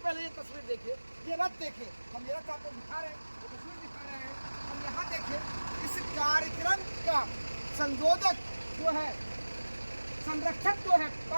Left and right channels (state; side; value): inverted; both; correlation -1.00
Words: ये तस्वीर देखिए, ये रथ देखिए, हम ये रथ आपको दिखा रहे हैं, वो तस्वीर दिखा रहे हैं। हम यहाँ देखिए, इस कार्यक्रम का संयोजक जो है, संरक्षक जो है,